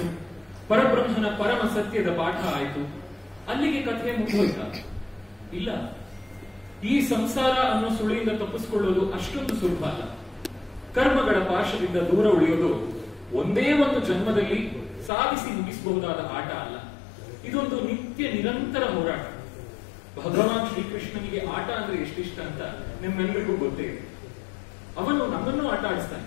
ಪರಬ್ರಹ್ಮನ ಪರಮ ಸತ್ಯದ ಪಾಠ ಆಯಿತು, ಅಲ್ಲಿಗೆ ಕಥೆ ಮುಗಿದೋಯ್ತ? ಇಲ್ಲ. ಈ ಸಂಸಾರ ಅನ್ನೋ ಸುಳಿಯಿಂದ ತಪ್ಪಿಸಿಕೊಳ್ಳೋದು ಅಷ್ಟೊಂದು ಸುಲಭ ಅಲ್ಲ. ಕರ್ಮಗಳ ಪಾಶದಿಂದ ದೂರ ಉಳಿಯೋದು ಒಂದೇ ಒಂದು ಜನ್ಮದಲ್ಲಿ ಸಾಧಿಸಿ ಮುಗಿಸಬಹುದಾದ ಆಟ ಅಲ್ಲ. ಇದೊಂದು ನಿತ್ಯ ನಿರಂತರ ಹೋರಾಟ. ಭಗವಾನ್ ಶ್ರೀಕೃಷ್ಣನಿಗೆ ಆಟ ಅಂದ್ರೆ ಎಷ್ಟಿಷ್ಟ ಅಂತ ನಿಮ್ಮೆಲ್ಲರಿಗೂ ಗೊತ್ತೇ ಇದೆ. ಅವನು ನಮ್ಮನ್ನು ಆಟ ಆಡಿಸ್ತಾನೆ,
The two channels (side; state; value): right; drops out; at 15.1 s